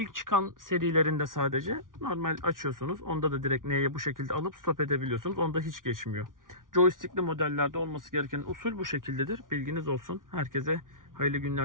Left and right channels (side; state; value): left; late; 0.89 ms